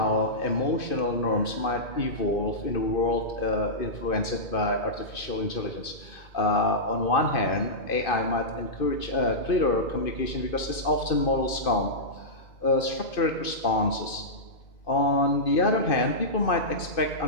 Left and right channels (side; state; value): right; late; 2.5 ms